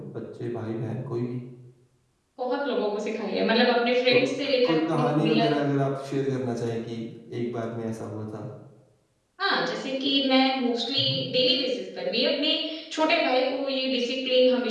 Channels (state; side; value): identical; both; correlation 1.00